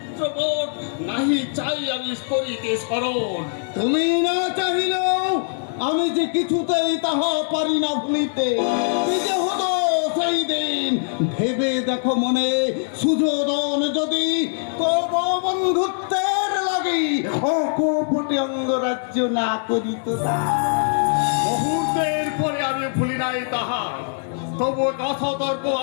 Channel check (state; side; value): silent; right; digital silence